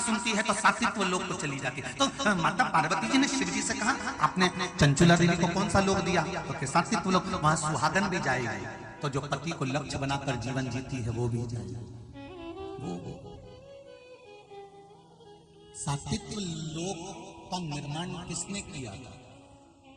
है तो सात्विक लोक को चली जाती है। तो माता पार्वती जी ने शिव जी से कहा, आपने चंचुला देवी को कौन सा लोक दिया? तो सात्विक लोक, वहां सुहागन भी जाएगी, तो जो पति को लक्ष्य बनाकर जीवन जीती है वो भी जाएगी। सात्विक लोक का निर्माण किसने किया था?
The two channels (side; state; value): both; identical; correlation 1.00